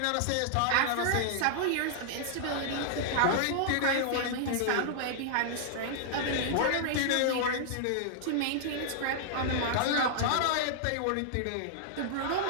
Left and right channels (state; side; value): different; both; correlation -0.01